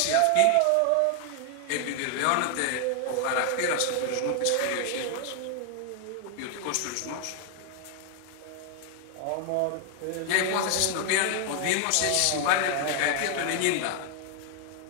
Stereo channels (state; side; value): different; both; correlation 0.00